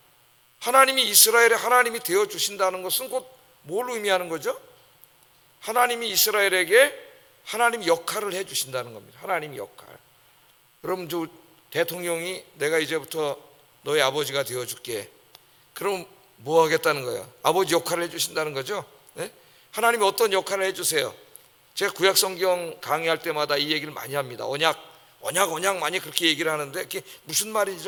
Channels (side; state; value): both; identical; correlation 1.00